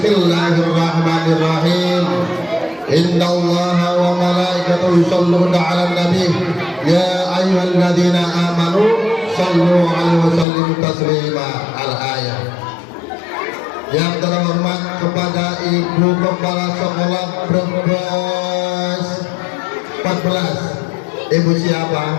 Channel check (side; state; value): right; drops out; at 10.5 s